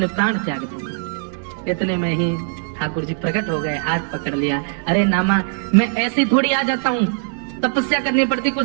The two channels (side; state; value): left; silent; digital silence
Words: प्राण त्याग दूंगा। इतने में ही ठाकुर जी प्रकट हो गए, हाथ पकड़ लिया। अरे नामा, मैं ऐसे थोड़ी आ जाता हूँ, तपस्या करनी पड़ती, कुछ